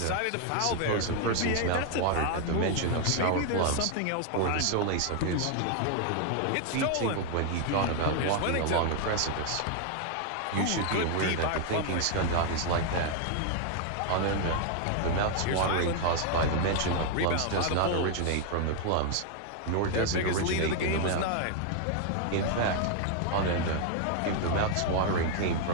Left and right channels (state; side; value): different; both; correlation 0.00